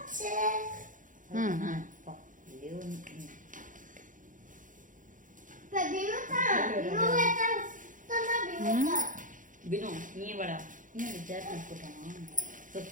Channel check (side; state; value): left; late; 0.38 ms